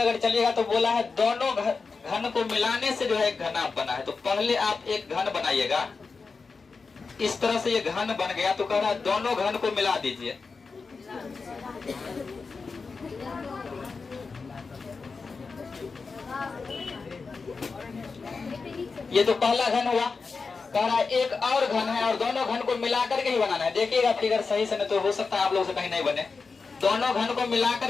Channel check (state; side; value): quieter; right; 4.6 dB